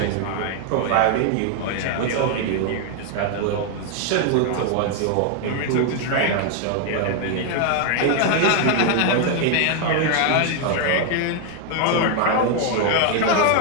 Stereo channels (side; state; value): both; different; correlation 0.00